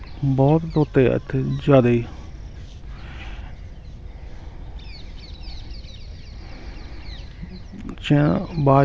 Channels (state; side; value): identical; both; correlation 1.00